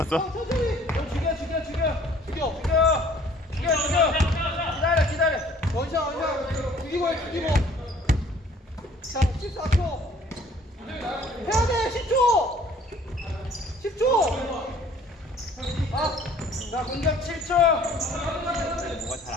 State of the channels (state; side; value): normal; both; correlation 0.55